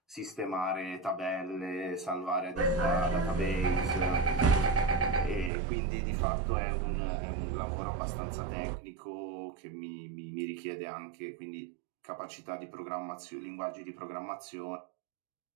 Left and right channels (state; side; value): drops out; left; at 5.5 s